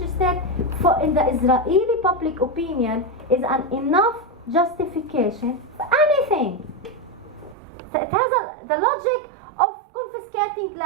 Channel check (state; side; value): drops out; left; at 7.6 s